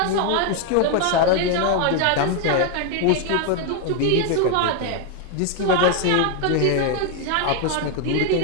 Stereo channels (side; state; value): both; different; correlation 0.01